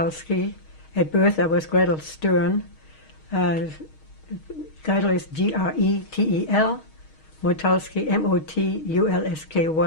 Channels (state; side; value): late; right; 6.4 ms